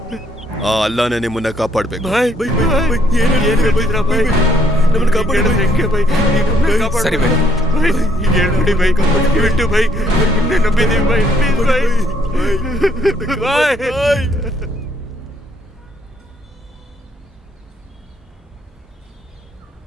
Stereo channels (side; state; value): both; normal; correlation 0.67